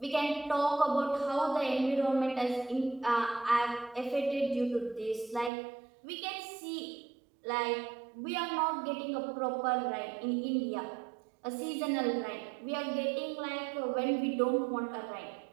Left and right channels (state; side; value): drops out; left; at 5.5 s